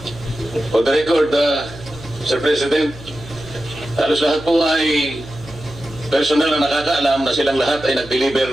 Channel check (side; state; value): right; noise; hum, 17 dB below the sound